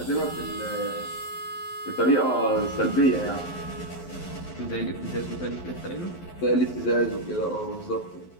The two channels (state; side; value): late; right; 11 ms